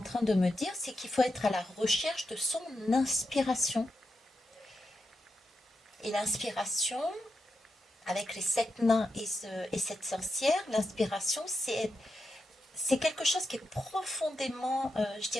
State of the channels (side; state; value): both; normal; correlation 0.87